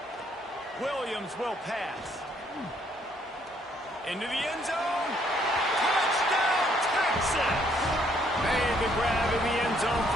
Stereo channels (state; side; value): normal; both; correlation 0.67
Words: Williams will pass. Into the end zone. Touchdown, Texas! Made the grab in the end zone